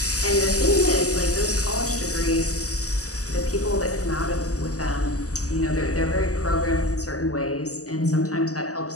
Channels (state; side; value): late; right; 0.66 ms